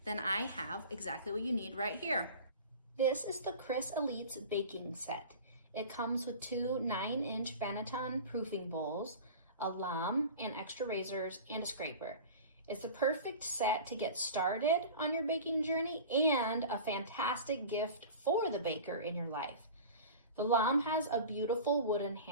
then I have exactly what you need right here. This is the Criss Elite baking set. It comes with two 9-inch Banneton proofing bowls, a lame and extra razors, and a scraper. It's the perfect set to get started on your baking journey and a fantastic gift for the baker in your life. The lame has a beautiful wooden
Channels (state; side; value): inverted; both; correlation -0.36